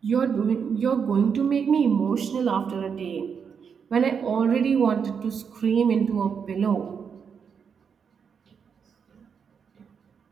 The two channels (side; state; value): left; quieter; 6.6 dB